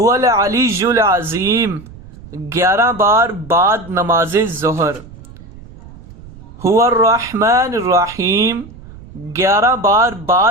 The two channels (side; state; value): right; noise; rumble, 19 dB below the sound